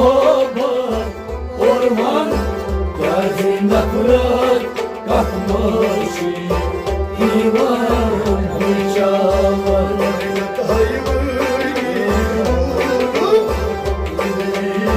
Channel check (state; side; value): identical; both; correlation 1.00